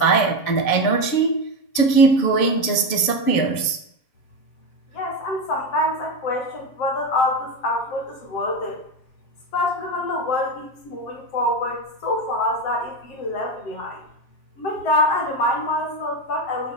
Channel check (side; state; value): right; late; 7.5 ms